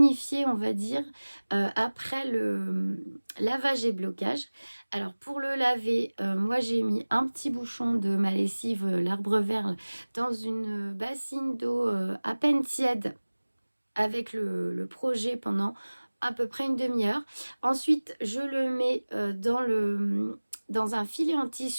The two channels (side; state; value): both; inverted; correlation -1.00